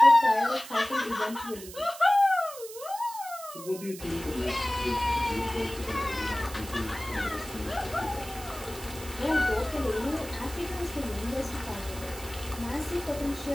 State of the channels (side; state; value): right; noise; hiss, 14 dB below the sound